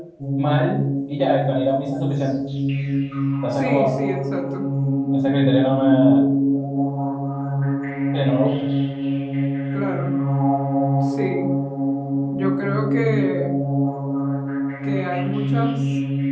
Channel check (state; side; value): identical; both; correlation 1.00